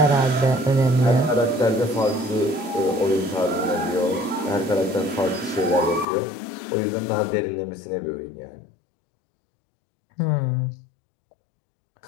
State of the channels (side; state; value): right; drops out; at 6.1 s